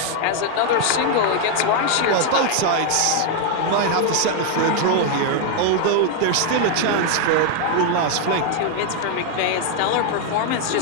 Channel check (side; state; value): both; different; correlation 0.00